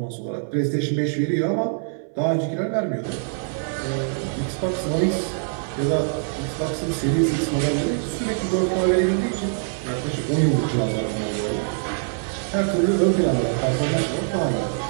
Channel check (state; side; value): silent; left; 63 dB below the other